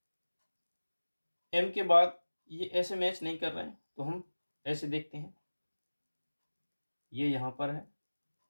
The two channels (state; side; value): inverted; both; correlation -1.00